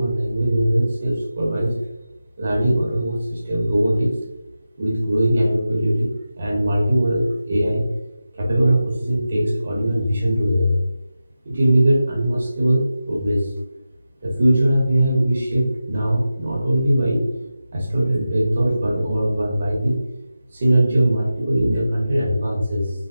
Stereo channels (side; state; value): both; inverted; correlation -0.93